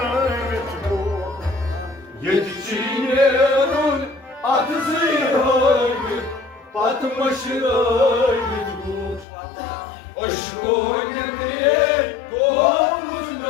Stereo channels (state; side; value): drops out; right; at 9.2 s